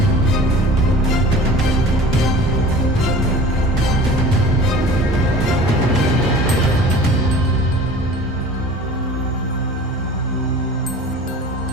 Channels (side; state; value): both; normal; correlation 0.42